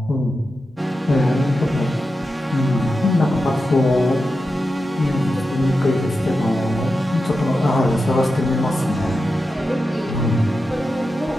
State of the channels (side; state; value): both; normal; correlation 0.90